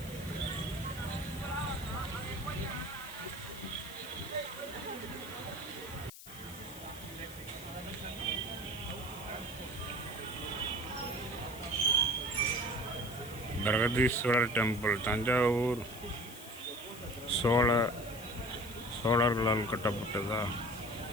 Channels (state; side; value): noise; left; hiss, 15 dB below the sound